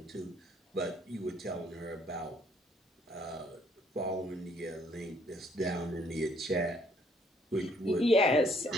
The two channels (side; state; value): both; normal; correlation 0.65